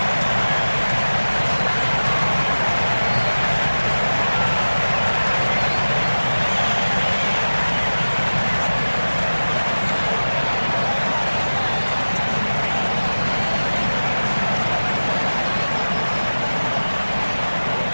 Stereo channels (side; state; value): both; inverted; correlation -1.00